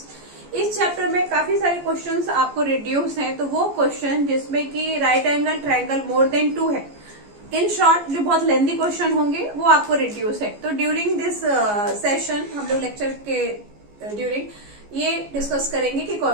इस चैप्टर में काफी सारे क्वेश्चंस आपको रिड्यूस हैं, तो वो क्वेश्चन जिसमें कि right angle triangle more than 2 है, इन शॉर्ट जो बहुत लेंथी क्वेश्चन होंगे वो आपको रिड्यूस है। तो ड्यूरिंग दिस सेशन हम लोग लेक्चर के ड्यूरिंग ये डिस्कस करेंगे कि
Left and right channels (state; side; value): late; left; 14 ms